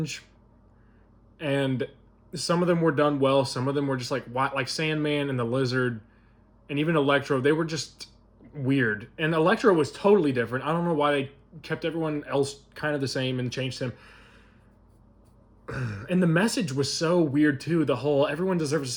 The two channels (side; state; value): both; identical; correlation 1.00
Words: and some of them were done well. Some of them were just like Sandman and the Lizard, and even Electro. They were just weird. And Electro was totally different. I don't know why they kept everyone else kind of the same and changed him. And the message was so weird too. The whole everyone deserves a